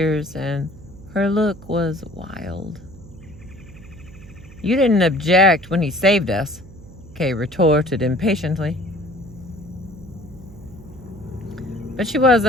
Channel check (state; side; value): noise; right; hum, 19 dB below the sound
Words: and her look was wild. You didn't object when he saved us, Kay retorted impatiently. But she was